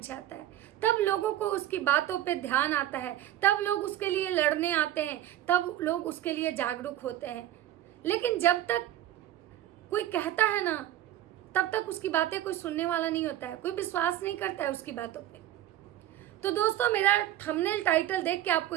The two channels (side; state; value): left; quieter; 12.9 dB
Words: जाता है, तब लोगों को उसकी बातों पे ध्यान आता है, तब लोग उसके लिए लड़ने आते हैं, तब लोग उसके लिए जागरूक होते हैं। लेकिन जब तक कोई कहता है ना, तब तक उसकी बातें कोई सुनने वाला नहीं होता है, कोई विश्वास नहीं करता है उसकी बातों पे। तो दोस्तों, मेरा थंबनेल टाइटल देख के आपको